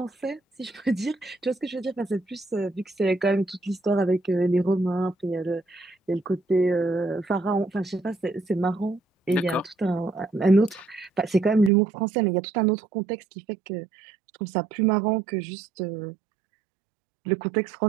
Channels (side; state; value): left; drops out; at 11.7 s